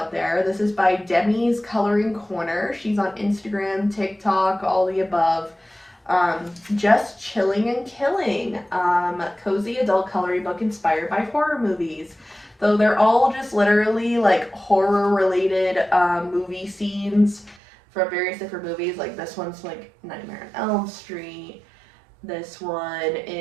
there. This is by Demi's Coloring Corner. She's on Instagram, TikTok, all the above. Just Chilling and Killing, cozy adult coloring book inspired by horror movies. Though they're all just literally like horror related movie scenes from various different movies. Like this one's like Nightmare on Elm Street. This one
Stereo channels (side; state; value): left; drops out; at 17.6 s